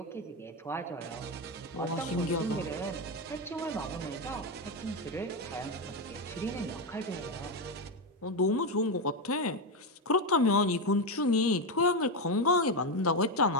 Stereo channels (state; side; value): normal; both; correlation 0.09